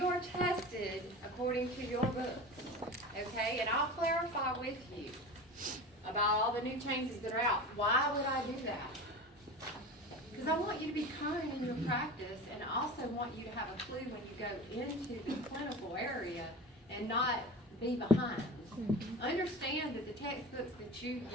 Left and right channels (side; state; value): both; normal; correlation 0.32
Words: are tested according to your books, okay? And I'll clarify with you about all the new changes that are out. Why would I do that? Because I want you to be current in your practice, and I also want you to have a clue when you go into the clinical area and not be behind. Understand that the textbooks that you